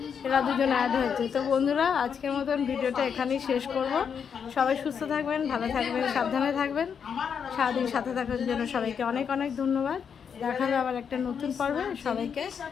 এরা দুজন অ্যাড হয়েছে। তো বন্ধুরা, আজকের মতন ভিডিওটা এখানেই শেষ করব। সবাই সুস্থ থাকবেন, ভালো থাকবেন, সাবধানে থাকবেন। সারাদিন সাথে থাকার জন্য সবাইকে অনেক অনেক ধন্যবাদ। দেখা হবে আবার একটা নতুন পর্বে। সবাইকে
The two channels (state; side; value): quieter; right; 7.1 dB